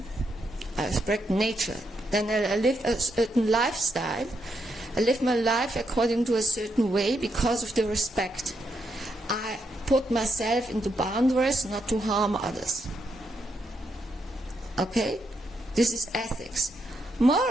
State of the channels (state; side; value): normal; both; correlation 0.80